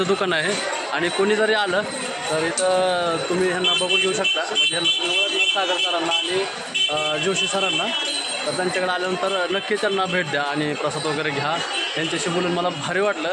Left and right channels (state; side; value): identical; both; correlation 1.00